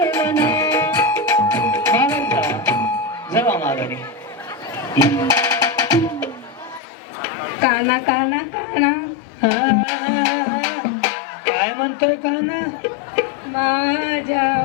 वनार. जावा माघारी. काना काना काना काय म्हणतोय काना? माझ्या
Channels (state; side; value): drops out; right; at 6.8 s